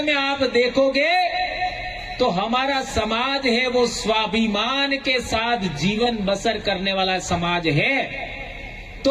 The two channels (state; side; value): identical; both; correlation 1.00